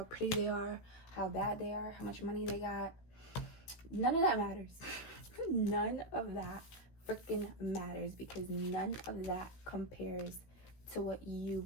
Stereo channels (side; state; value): right; late; 16 ms